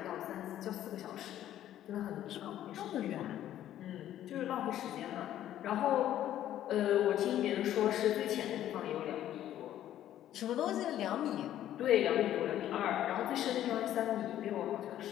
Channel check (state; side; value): quieter; right; 12.0 dB